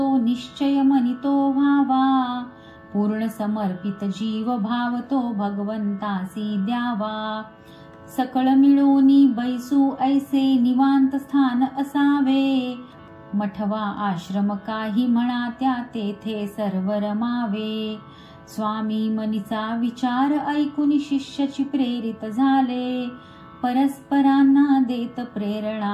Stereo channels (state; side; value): identical; both; correlation 1.00